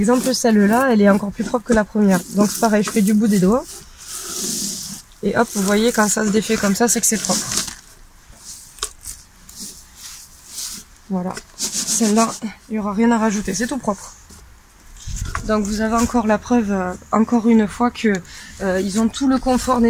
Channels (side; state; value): both; identical; correlation 1.00